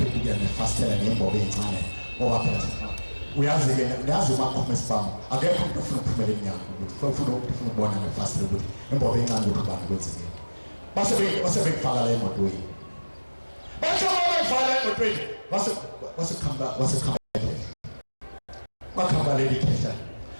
nefastela nembobo encane ngoba phela uyazi umakhoma esibhamu akekho umuntu ofuna ukuphumela eminyango ufuna ukubona nefastela ukuthi imbobo encane ukuthi ubani kwenzekile. Base bekufaka la emotweni bathi bafaka emotweni wakhamba leli khehla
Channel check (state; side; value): inverted; both; correlation -1.00